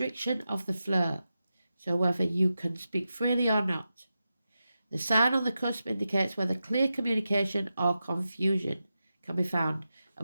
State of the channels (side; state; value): both; inverted; correlation -0.91